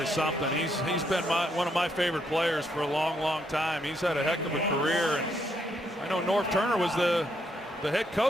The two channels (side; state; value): both; normal; correlation 0.75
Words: something. He's been one of my favorite players for a long time. He's had a heck of a career, and I know Norv Turner was the head